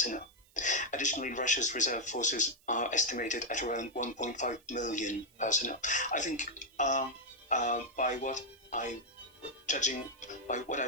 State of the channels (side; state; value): right; noise; hiss, 30 dB below the sound